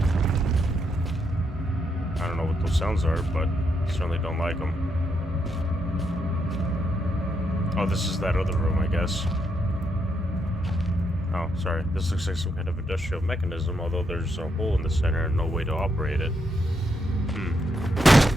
I don't know what those sounds are, but I certainly don't like them. Oh, this is that other room, I guess. Oh, sorry. This looks like some kind of industrial mechanism, although there's a hole in the center and no way to operate it.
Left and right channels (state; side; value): normal; both; correlation 0.79